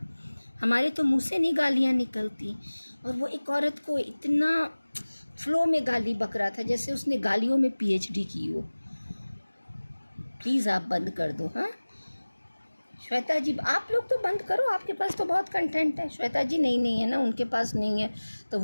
हमारे तो मुंह से नहीं गालियाँ निकलती, और वो एक औरत को इतना फ्लो में गाली बक रहा था जैसे उसने गालियों में PhD की हो। प्लीज़ आप बंद कर दो। हाँ श्वेता जी, आप लोग तो बंद करो, आपके पास तो बहुत कंटेंट है। श्वेता जी नहीं है ना, उनके पास नहीं है, तो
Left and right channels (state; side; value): inverted; both; correlation -1.00